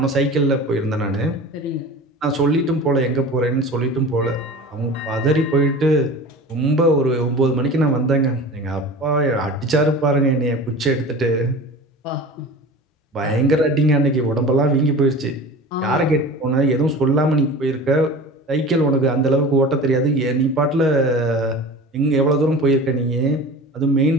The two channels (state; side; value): normal; both; correlation 0.36